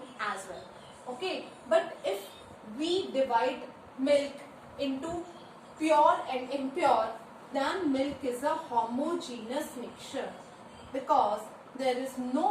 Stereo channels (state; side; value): identical; both; correlation 1.00